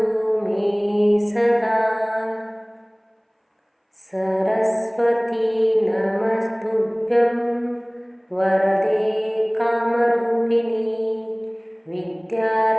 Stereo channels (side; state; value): both; identical; correlation 1.00